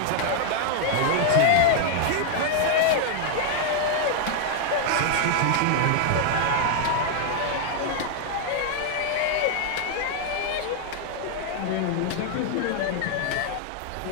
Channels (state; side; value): different; both; correlation 0.00